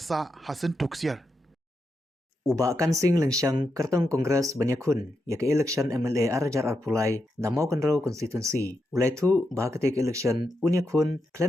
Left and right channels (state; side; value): normal; both; correlation 0.85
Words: sa hasan tuksier. Uba kan sing lengsiang kertong kongres banyakun ya ke election MLA Arajar Arpulai namau kenrau konstituensi ulai tu bahakatek election unyakun